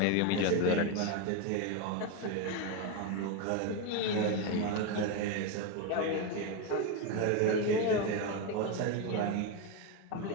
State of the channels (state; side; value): different; both; correlation 0.03